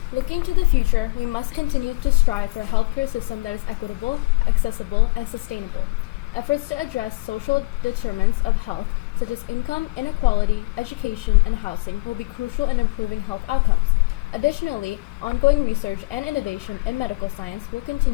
Looking to the future, we must continue to strive for a healthcare system that is equitable, accessible, and sustainable. Efforts to address social determinants of health, such as income inequality, education, and housing, will be crucial in improving health outcomes. Additionally, ongoing research and innovation in medical science will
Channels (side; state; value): right; quieter; 24.9 dB